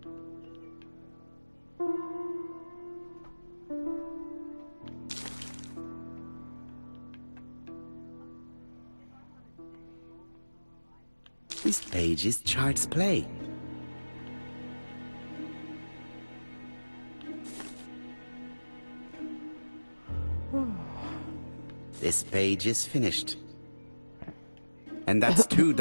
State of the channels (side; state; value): both; inverted; correlation -1.00